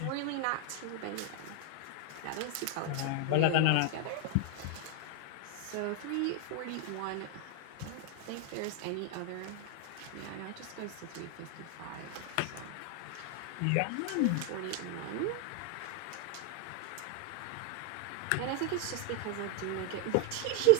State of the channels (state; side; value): different; both; correlation 0.00